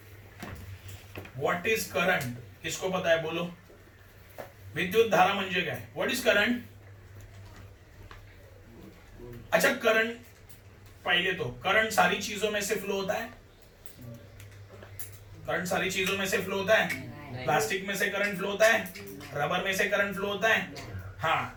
What is current? किसको पता है बोलो? विद्युत धारा म्हणजे काय? What is current? अच्छा, करंट पहले तो करंट सारी चीजों में से फ्लो होता है। करंट सारी चीजों में से फ्लो होता है। प्लास्टिक में से करंट फ्लो होता है, रबर में से करंट फ्लो होता है।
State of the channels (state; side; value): identical; both; correlation 1.00